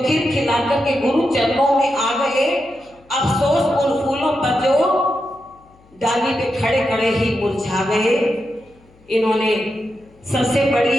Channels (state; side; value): noise; left; hum, 29 dB below the sound